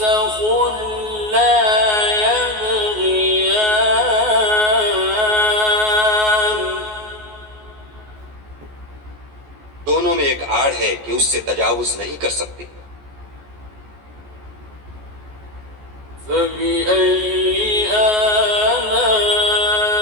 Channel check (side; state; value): left; late; 14 ms